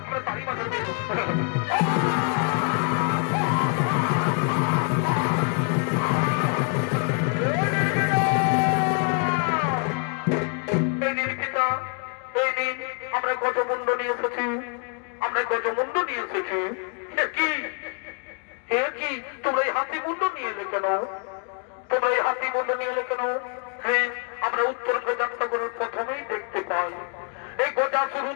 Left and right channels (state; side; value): quieter; right; 38.8 dB